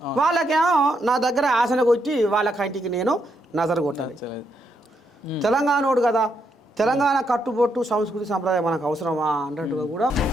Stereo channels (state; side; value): normal; both; correlation 0.78